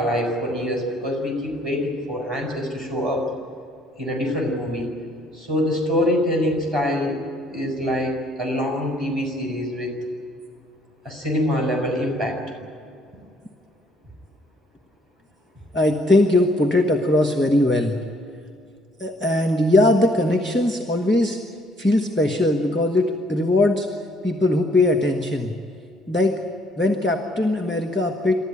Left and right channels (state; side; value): normal; both; correlation 0.64